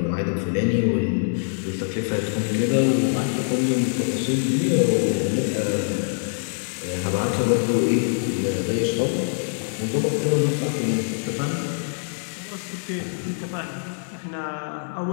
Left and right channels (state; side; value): silent; right; digital silence